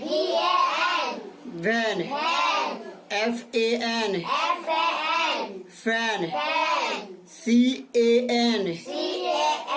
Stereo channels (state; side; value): identical; both; correlation 1.00